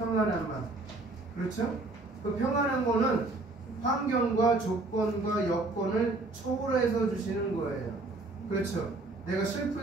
마음. 그렇죠? 그 평안한 거는 환경과 조건과 여건을 초월해서 주시는 거예요. 그렇죠? 내가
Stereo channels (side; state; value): left; quieter; 3.2 dB